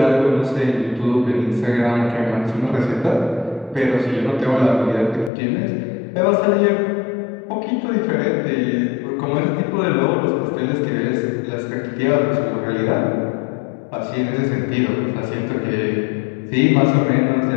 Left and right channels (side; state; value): right; drops out; at 5.3 s